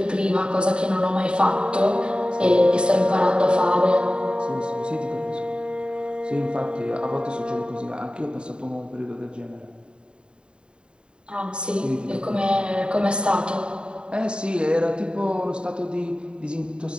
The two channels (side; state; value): left; late; 0.050 ms